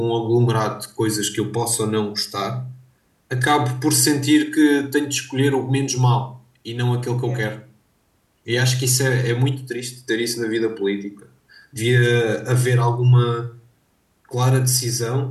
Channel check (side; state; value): both; identical; correlation 1.00